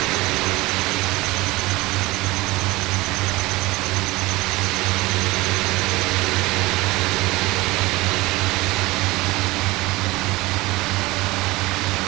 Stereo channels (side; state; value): left; quieter; 21.0 dB